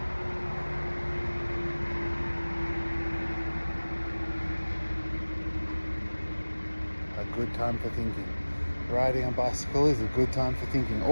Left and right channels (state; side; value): inverted; both; correlation -1.00